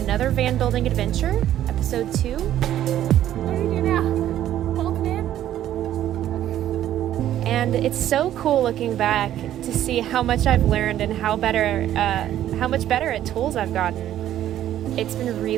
van building adventure, episode 2. What do you do now? Hold it in? And it's so cool looking back to see how much I've learned and how much better at tools I've gotten. It's been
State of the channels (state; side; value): quieter; left; 12.0 dB